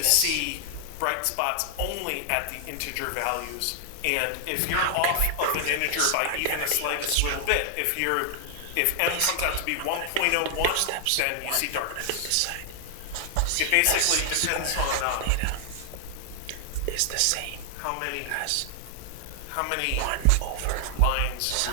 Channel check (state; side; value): different; both; correlation 0.00